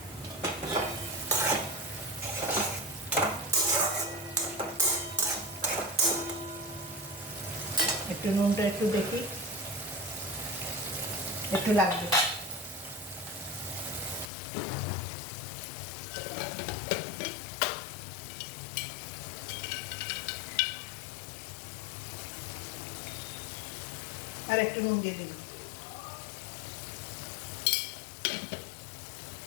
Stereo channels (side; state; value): right; drops out; at 14.3 s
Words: একটু নুনটা একটু দেখি, একটু লাগবে। আর একটু নুন দিয়ে দিন।